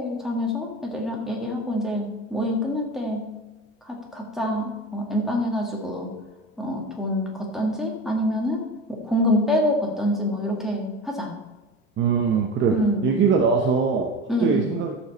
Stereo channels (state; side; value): normal; both; correlation 0.30